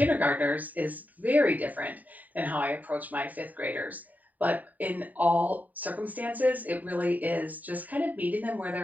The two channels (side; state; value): left; late; 0.079 ms